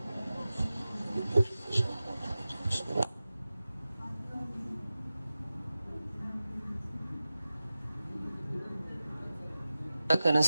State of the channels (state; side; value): inverted; both; correlation -0.96